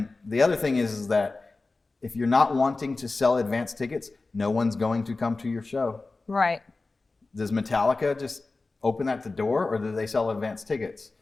the other thing is that if you're not wanting to sell advance tickets, no one's going to come to your show. Right. Does Metallica just open at the door, or do they sell advance tickets?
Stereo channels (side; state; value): right; quieter; 3.6 dB